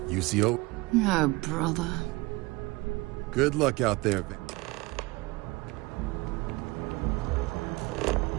UCO? Oh, brother. Good luck out there, Van.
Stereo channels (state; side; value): quieter; left; 23.1 dB